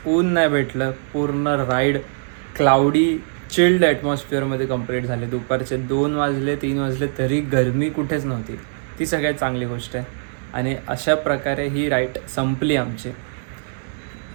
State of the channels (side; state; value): left; silent; 59 dB below the other